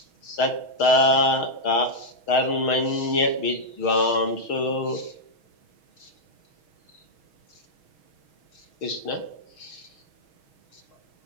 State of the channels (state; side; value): late; right; 6.4 ms